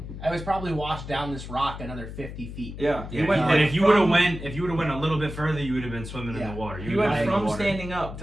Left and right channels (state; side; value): noise; left; hum, 10 dB below the sound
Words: I was probably washed down this rock another 50 feet. Yeah. Yeah, He went and like if you would have from- went a little bit further, you would have been swimming in Yeah. the water. He would've went been in the from water. standing up